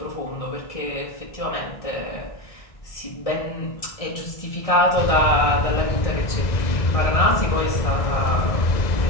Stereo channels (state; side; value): late; right; 1.6 ms